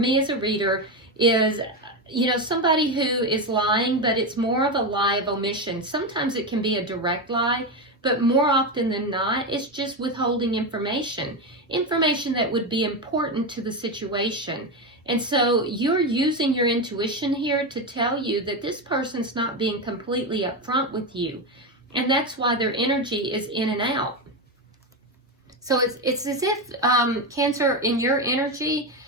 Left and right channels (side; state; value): both; normal; correlation 0.13